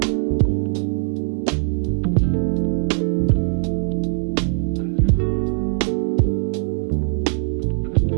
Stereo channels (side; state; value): left; silent; 65 dB below the other